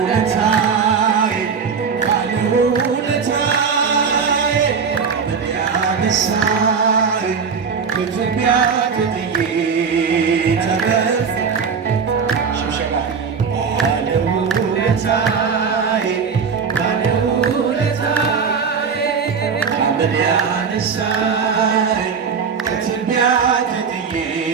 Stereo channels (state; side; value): quieter; left; 6.0 dB